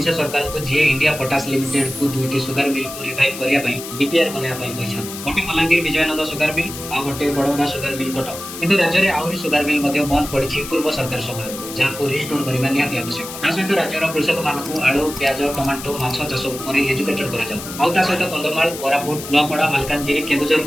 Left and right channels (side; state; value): left; noise; hiss, 11 dB below the sound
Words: सरकार को जे इंडिया पोटास लिमिटेड को दुईटी सुगर मिल को रिवाइव करिया पई बीपीआर बनाया पई कहछन। गोटे बलांगीर विजयनगर सुगर मिल आ गोटे बड़ौदा सुगर मिल कटक। किंतु राज्य रे आउरी सुगर मिल मध्य बंद पड़िछि पूर्व सरकार समय जहाँ को रिस्टोर करबा निहाती आवश्यक। ता सहित राज्य रो कृषक मानकु आलू प्याज टमाटो माछ चाष ऊपर एजुकेटेड करा जाऊ। आ ता सहित कंदमाल कोरापुट नौपड़ा मालकानगिरी केन्दुझर